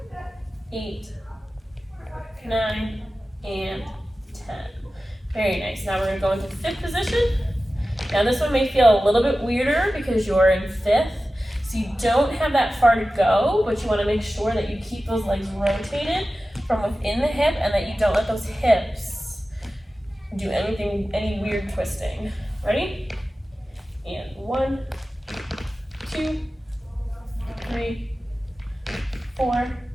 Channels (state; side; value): normal; both; correlation 0.95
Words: 8, 9, and 10. Very nice. Now we're going to go into fifth position. Now this one may feel a little bit weirder because you're in fifth, so you don't have that far to go, but you want to make sure that you keep those legs rotated from within the hip and that you don't let those hips do any weird twisting. Ready? And 1, 2, 3, 4,